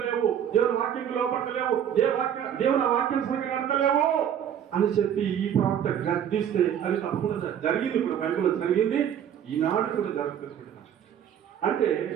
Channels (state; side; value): quieter; left; 9.3 dB